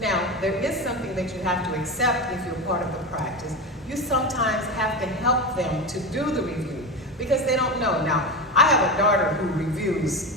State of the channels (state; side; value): normal; both; correlation 0.21